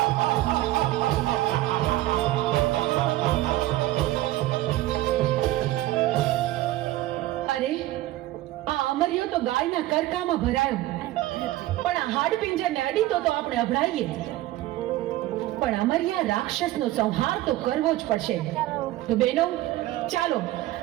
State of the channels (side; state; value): left; quieter; 16.1 dB